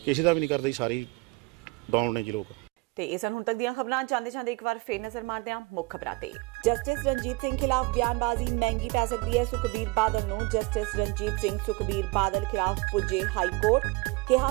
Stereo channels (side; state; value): left; quieter; 23.6 dB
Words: ਕਿਸੇ ਦਾ ਵੀ ਨਹੀਂ ਕਰਦੇ ਜੀ। ਸਾਰੀ ਡਾਊਨ ਨੇ ਜੀ ਲੋਕ। ਤੇ ਇਹ ਸਨ ਹੁਣ ਤੱਕ ਦੀਆਂ ਖਬਰਾਂ। ਜਾਂਦੇ ਇੱਕ ਵਾਰ ਫੇਰ ਨਜ਼ਰ ਮਾਰਦੇ ਹਾਂ ਮੁੱਖ ਖਬਰਾਂ ਤੇ। ਜਸਟਿਸ ਰਣਜੀਤ ਸਿੰਘ ਖਿਲਾਫ ਬਿਆਨਬਾਜ਼ੀ ਮਹਿੰਗੀ ਪੈ ਸਕਦੀ ਹੈ। ਸੁਖਬੀਰ ਬਾਦਲ ਨੂੰ ਜਸਟਿਸ ਰਣਜੀਤ ਸਿੰਘ ਸੁਖਬੀਰ ਬਾਦਲ ਖਿਲਾਫ ਪੁੱਜੇ ਹਾਈ ਕੋਰਟ।